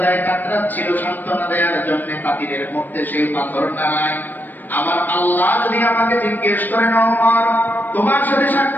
কাতরাচ্ছিল, সান্ত্বনা দেওয়ার জন্য পাতিলের মধ্যে সে পাথর নাড়ায়। আমার আল্লাহ যদি আমাকে জিজ্ঞেস করেন, ওমর তোমার সাথে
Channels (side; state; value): right; late; 0.089 ms